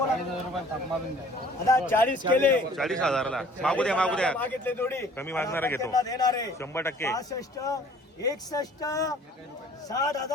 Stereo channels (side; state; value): both; normal; correlation 0.53